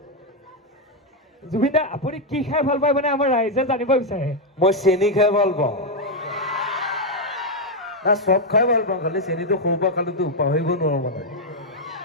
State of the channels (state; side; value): normal; both; correlation 0.01